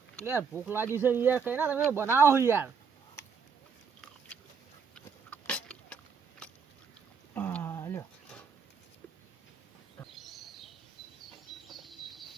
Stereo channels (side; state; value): left; quieter; 6.1 dB